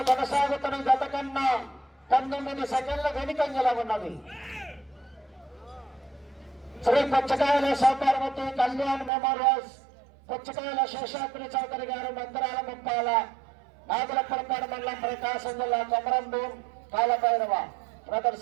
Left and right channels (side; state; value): left; drops out; at 9.1 s